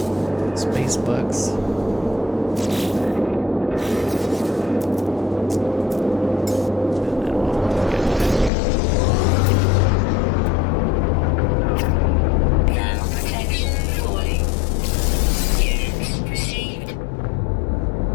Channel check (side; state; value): right; drops out; at 8.5 s